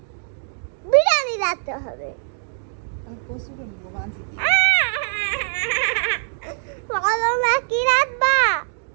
বিরিয়ানি রাঁধতে হবে। কালকে কচু রাঁধবো মাছ দিয়ে। বলো না কি রাঁধবা?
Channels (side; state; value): left; silent; digital silence